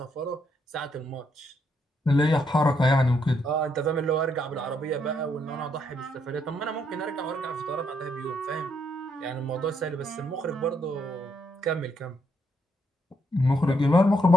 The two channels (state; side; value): normal; both; correlation 0.75